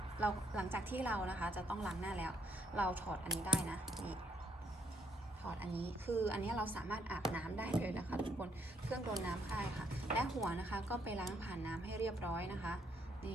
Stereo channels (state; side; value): normal; both; correlation 0.70